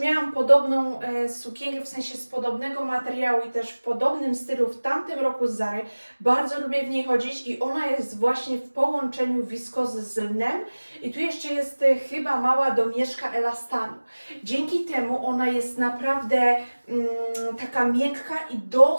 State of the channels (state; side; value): inverted; both; correlation -1.00